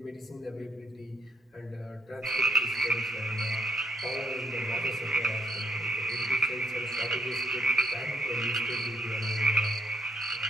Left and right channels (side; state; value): both; normal; correlation 0.71